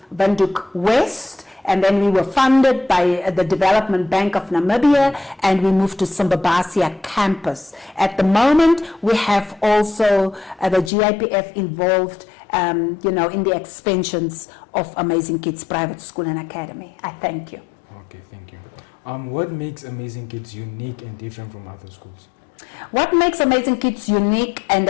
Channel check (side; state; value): right; drops out; at 10.9 s